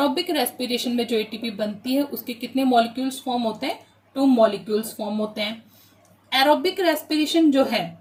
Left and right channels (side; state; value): both; identical; correlation 1.00